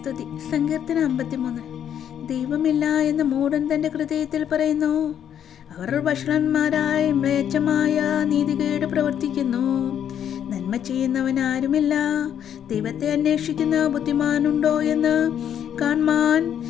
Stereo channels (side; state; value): right; quieter; 9.4 dB